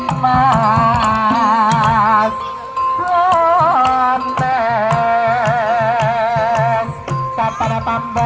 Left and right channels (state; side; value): identical; both; correlation 1.00